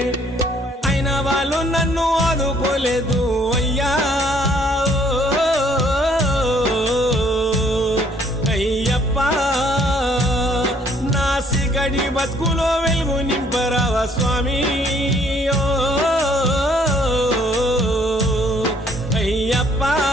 అయినా వాళ్ళు నన్ను ఆదుకోలేదు అయ్యా అయ్యప్ప నా సిగడి బతుకులో వెలుగు నింపరావా స్వామి అయ్యప్ప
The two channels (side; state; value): both; normal; correlation 0.63